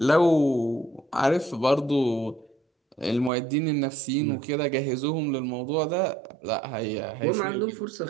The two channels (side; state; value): left; drops out; at 3.3 s